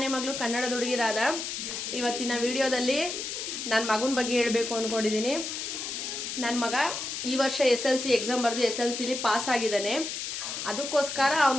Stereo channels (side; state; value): left; noise; hiss, 5 dB below the sound